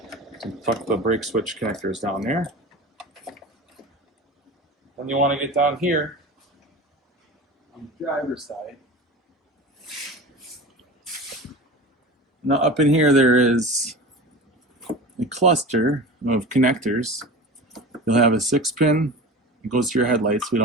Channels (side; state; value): both; normal; correlation 0.33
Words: tuck the brake switch connectors down there. Then you want to get down here on the driver's side. Now up in here there is a cluster of connectors. You'll have a 6-pin. It goes to your headlights. We